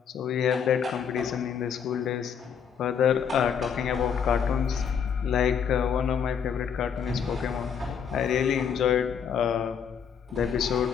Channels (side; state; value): right; quieter; 7.4 dB